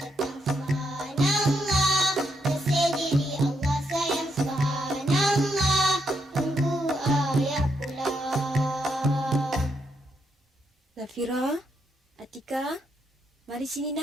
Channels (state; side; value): normal; both; correlation 0.79